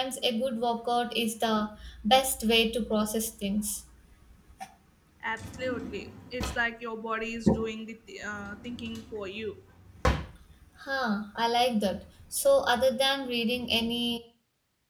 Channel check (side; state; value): both; identical; correlation 1.00